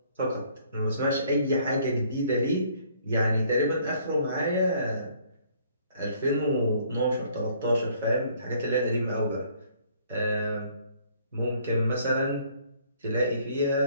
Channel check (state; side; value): inverted; both; correlation -0.61